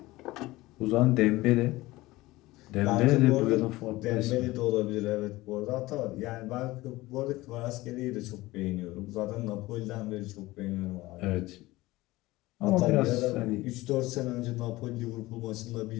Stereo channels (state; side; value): quieter; right; 19.1 dB